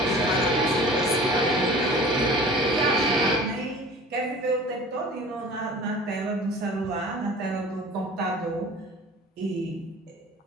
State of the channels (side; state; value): both; normal; correlation 0.43